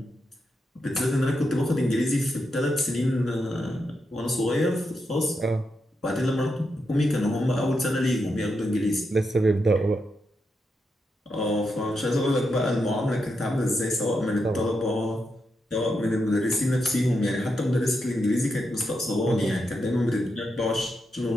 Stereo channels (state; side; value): normal; both; correlation 0.84